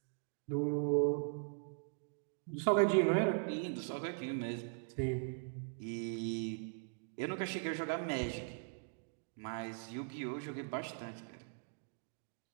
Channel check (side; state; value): left; silent; digital silence